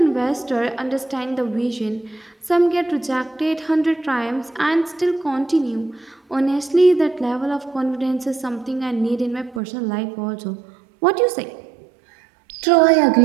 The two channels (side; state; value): left; drops out; at 9.6 s